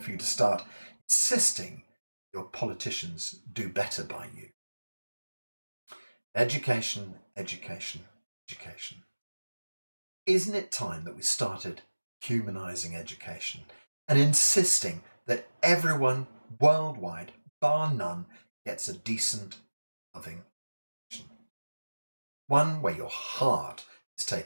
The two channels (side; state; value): both; inverted; correlation -1.00